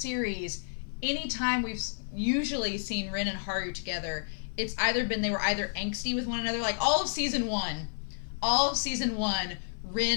anytime we've usually seen Rin and Haru together, it's either been they were either angsty with one another, like all of season one,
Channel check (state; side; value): silent; right; 57 dB below the other